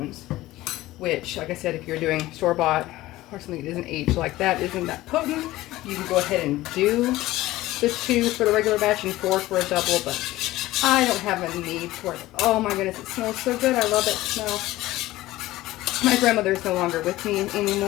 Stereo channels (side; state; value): right; quieter; 17.0 dB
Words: which, like I said, if you're doing store-bought or something that isn't aged like that, isn't that potent, you can go ahead and do the 2 for the regular batch and 4 for a double, but I don't have a need for it. Oh my goodness, it smells so good. I love that smell. My grandmother is no longer with me